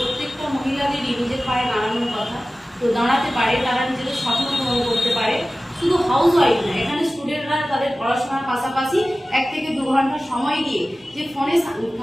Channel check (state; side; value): normal; both; correlation 0.96